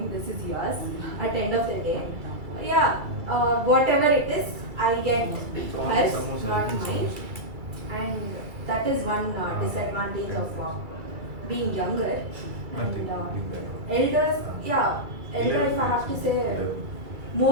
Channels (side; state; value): left; late; 2.3 ms